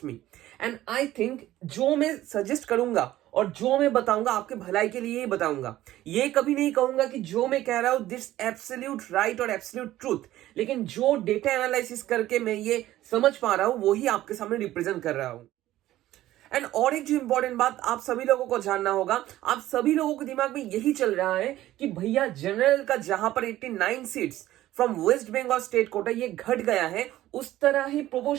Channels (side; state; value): left; quieter; 14.7 dB